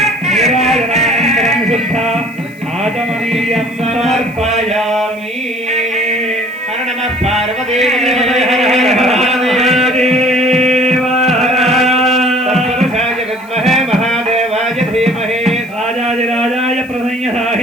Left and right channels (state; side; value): noise; right; hiss, 27 dB below the sound